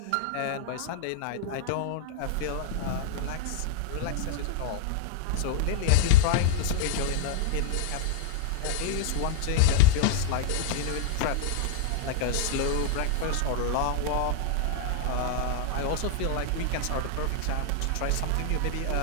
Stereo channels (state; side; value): different; both; correlation 0.00